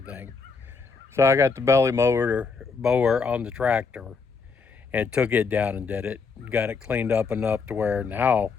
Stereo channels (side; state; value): right; quieter; 4.9 dB